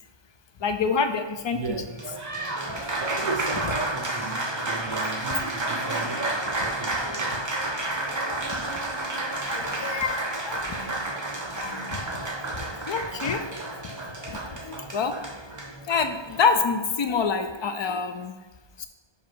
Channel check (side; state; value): right; late; 1.2 ms